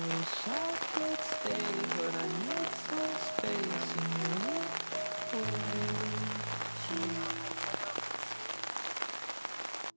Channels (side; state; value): both; inverted; correlation -1.00